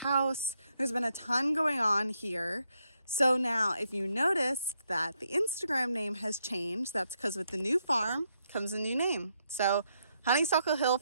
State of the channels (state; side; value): inverted; both; correlation -0.78